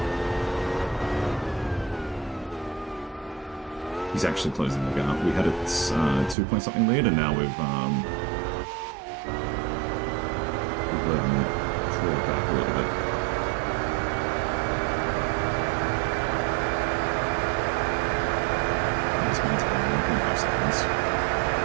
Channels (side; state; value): left; drops out; at 6.4 s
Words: He's actually closing the gap. We had a 2-point-something lead, and now we've let him crawl back a little bit. This means about 1.5 seconds.